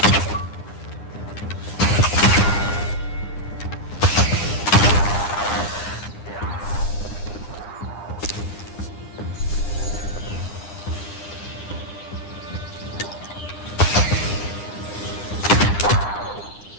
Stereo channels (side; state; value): right; late; 9.9 ms